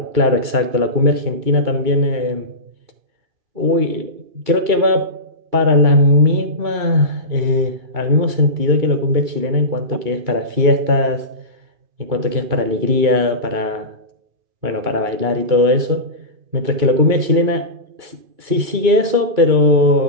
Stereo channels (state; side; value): late; left; 2.3 ms